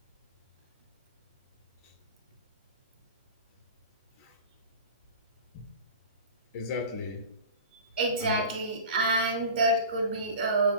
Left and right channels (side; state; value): both; inverted; correlation -0.36